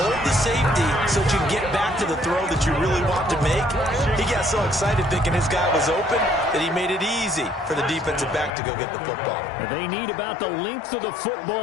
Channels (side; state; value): right; drops out; at 8.5 s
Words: the safety so that you can get back to the throw that you really want to make. He got so excited thinking his guy was open that he made it easy for the defensive back to go get the football. They need about the length of the